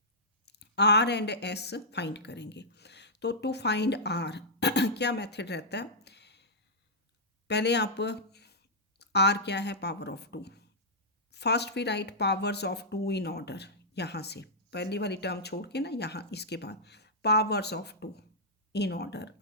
r and s find करेंगे। तो टू फाइंड r क्या मेथड रहता है, पहले आप r क्या है, power of 2, first we write powers of 2 in order, यहाँ से पहली वाली टर्म छोड़ के ना, यहाँ इसके बाद powers of 2 in order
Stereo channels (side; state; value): both; normal; correlation -0.11